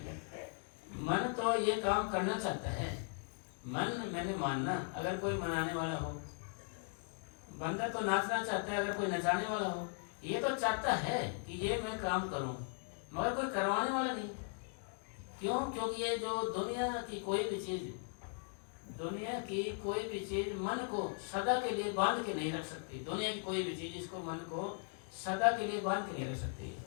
मन तो ये काम करना चाहता है। मन मैंने मानना, अगर कोई मनाने वाला हो, बंदा तो नाचना चाहता है, अगर कोई नचाने वाला हो, ये तो चाहता है कि ये मैं काम करूं, मगर कोई करवाने वाला नहीं। क्यों? क्योंकि ये जो दुनिया की कोई भी चीज मन को सदा के लिए बांध के नहीं रख सकती। दुनिया की कोई भी चीज इसको मन को सदा के लिए बांध के नहीं रख सकती।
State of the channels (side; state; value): right; silent; 52 dB below the other